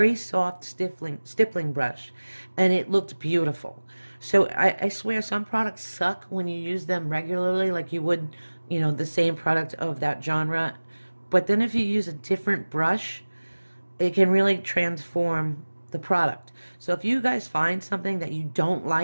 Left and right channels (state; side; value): inverted; both; correlation -1.00